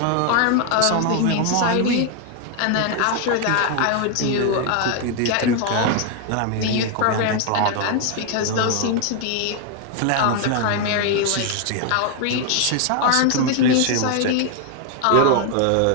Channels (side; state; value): both; different; correlation 0.00